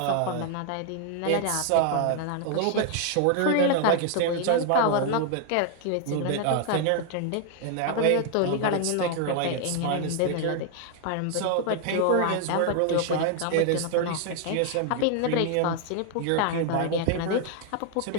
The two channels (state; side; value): different; both; correlation 0.00